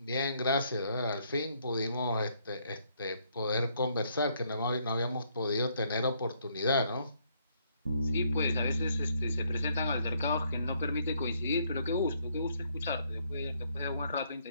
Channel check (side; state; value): both; inverted; correlation -0.70